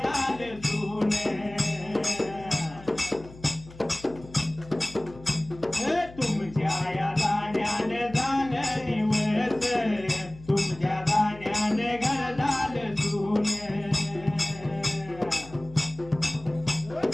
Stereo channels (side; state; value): left; noise; hum, 19 dB below the sound